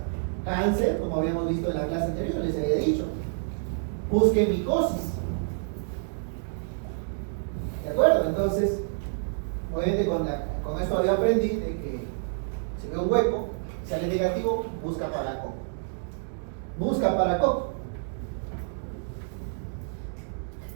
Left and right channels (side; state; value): left; silent; digital silence